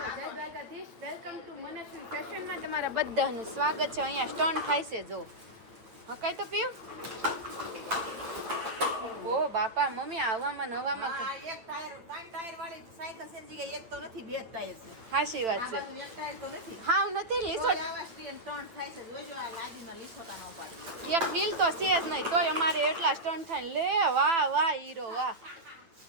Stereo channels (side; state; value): left; late; 9.0 ms